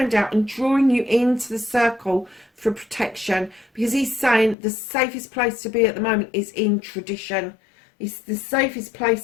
out and drawing you into the circle for protection, because he's saying the safest place to be at the moment is in tradition. It's the safest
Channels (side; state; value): right; drops out; at 4.5 s